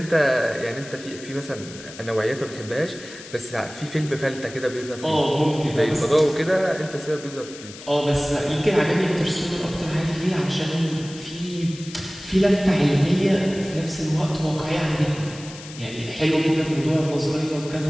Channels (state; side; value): noise; left; hiss, 16 dB below the sound